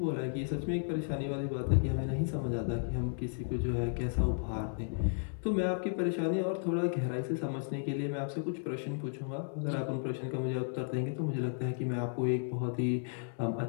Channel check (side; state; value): right; silent; digital silence